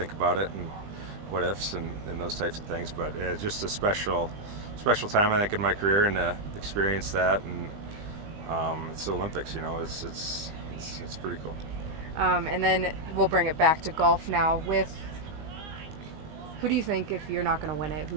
about it and what ifs and those types of things. But it's just a special time, I think, in my career, and to experience that, and it's the Olympics. It's pretty cool. And then we'll bring it back to golf now. With who do you think, if you're not going to win it,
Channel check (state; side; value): late; left; 20 ms